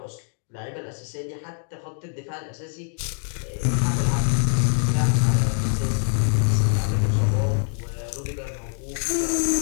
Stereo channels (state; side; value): silent; right; 56 dB below the other